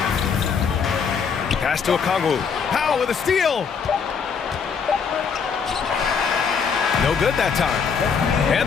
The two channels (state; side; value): quieter; right; 6.2 dB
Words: Pass to Okongwu. Powell with a steal. No good that time.